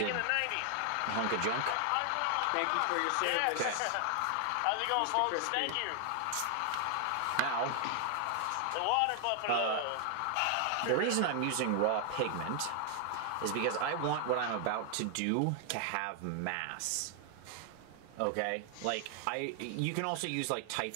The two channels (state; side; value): different; both; correlation 0.00